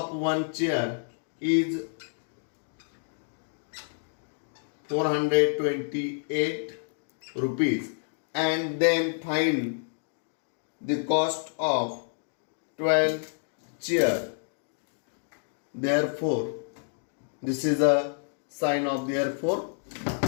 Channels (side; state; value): right; silent; digital silence